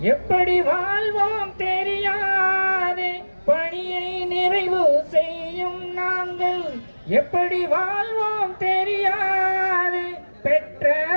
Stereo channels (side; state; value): both; inverted; correlation -1.00